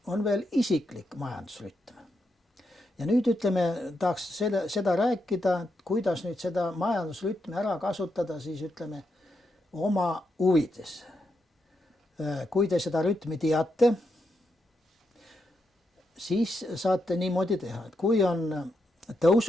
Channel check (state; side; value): normal; both; correlation 0.83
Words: on veel isiklik majandusrütm. Ja nüüd ütleme, tahaks seda rääkida, kuidas nüüd seda majandusrütmi ära kasutada, siis ütleme oma huvides. Kui te seda rütmi teate, siis saate niimoodi teha, et kui on